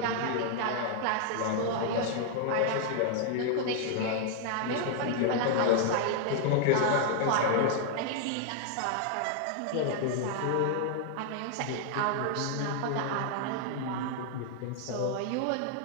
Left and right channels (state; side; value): different; both; correlation 0.00